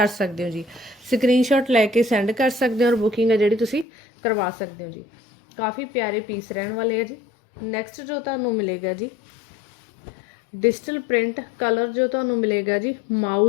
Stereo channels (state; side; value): drops out; right; at 3.9 s